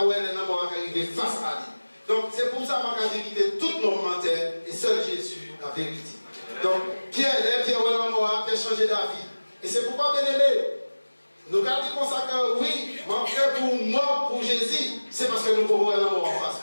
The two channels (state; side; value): inverted; both; correlation -1.00